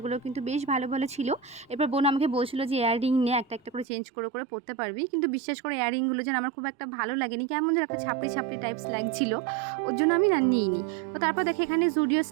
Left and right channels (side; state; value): left; drops out; at 3.9 s